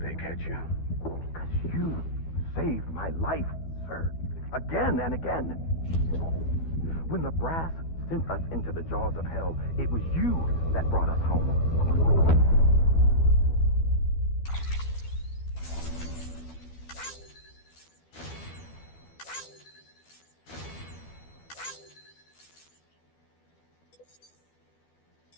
catch you. Because you saved my life, sir. Again and again. When the brass sent us into the jaws of hell, it was you that brought us home.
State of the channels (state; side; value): late; right; 12 ms